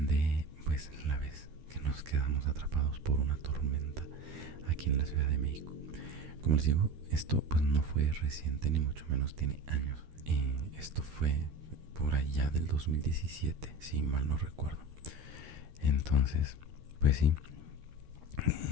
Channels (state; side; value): late; left; 13 ms